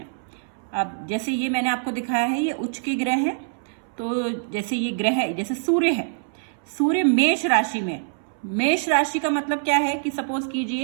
अब जैसे ये मैंने आपको दिखाया है, ये उच्च के ग्रह हैं। तो जैसे ये ग्रह है, जैसे सूर्य है, सूर्य मेष राशि में। मेष राशि का मतलब क्या है कि सपोज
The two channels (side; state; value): left; silent; 62 dB below the other